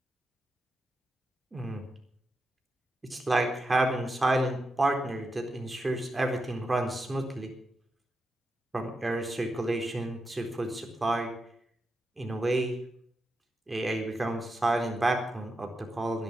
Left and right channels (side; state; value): both; normal; correlation 0.87